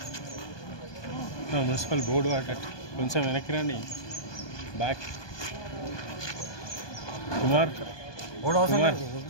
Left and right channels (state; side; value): late; right; 1.2 ms